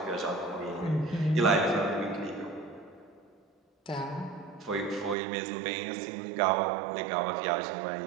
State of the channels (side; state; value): left; drops out; at 5.2 s